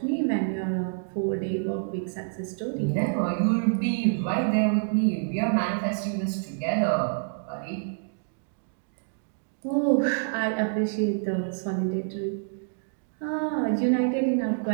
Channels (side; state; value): left; silent; digital silence